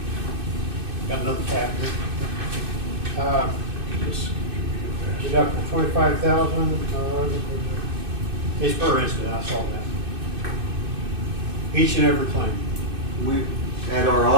Got another tab here. Deductible 25,000. It's per incident, I saw that. Each and every claim. We, at our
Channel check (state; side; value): late; left; 2.6 ms